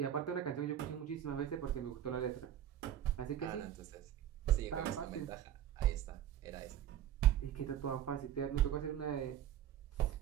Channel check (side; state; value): left; quieter; 10.9 dB